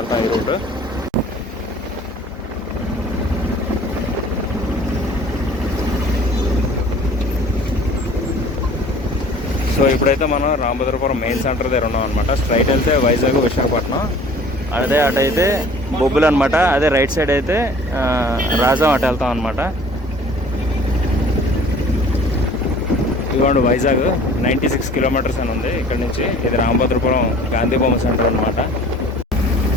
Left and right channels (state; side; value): normal; both; correlation 0.49